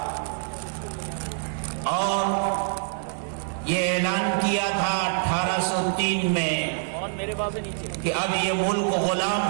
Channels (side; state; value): left; silent; 61 dB below the other